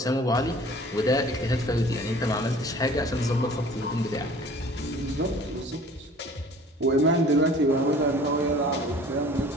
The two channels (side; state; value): both; normal; correlation 0.48